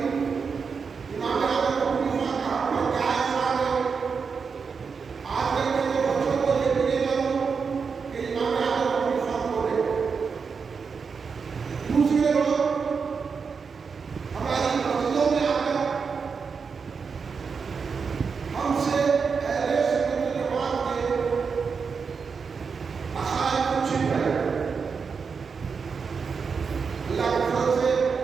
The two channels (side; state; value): left; quieter; 5.6 dB